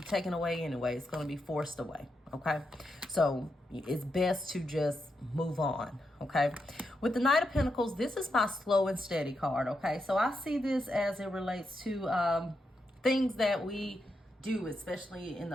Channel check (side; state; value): both; normal; correlation 0.84